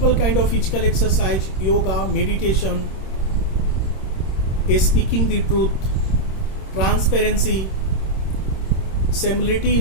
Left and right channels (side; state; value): right; late; 26 ms